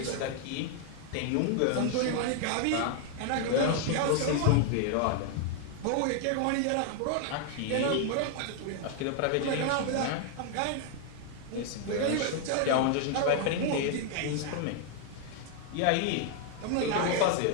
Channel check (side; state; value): both; different; correlation 0.00